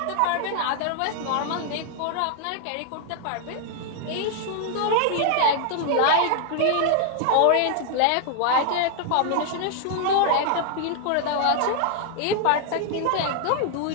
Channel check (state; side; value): different; both; correlation 0.00